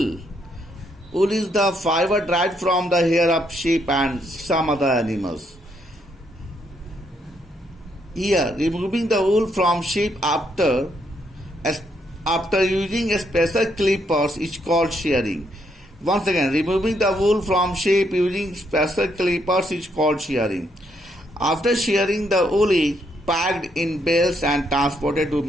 Wool is the fiber derived from the hair of sheep and some other animals. Here, removing the wool from sheep after using a special clippers is called shearing. Once again, removing the wool from sheep using special clippers is called shearing. After shearing, the wool is packed in bales and transported to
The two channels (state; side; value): normal; both; correlation 0.74